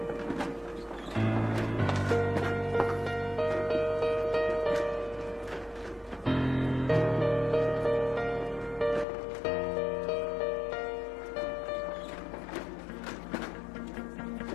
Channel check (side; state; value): right; drops out; at 9.1 s